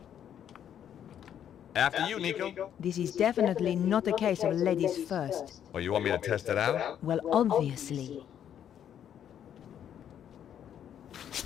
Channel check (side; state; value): right; quieter; 9.6 dB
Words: After you, Nico. This is definitely not a case of ladies first. Oh, you want me to test it out? Well, obviously.